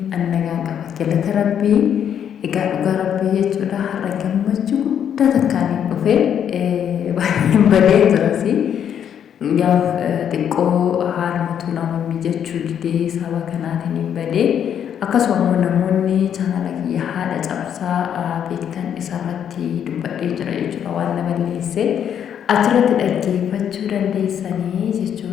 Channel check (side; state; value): right; quieter; 9.0 dB